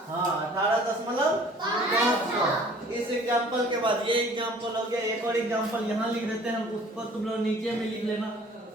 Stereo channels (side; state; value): both; normal; correlation 0.51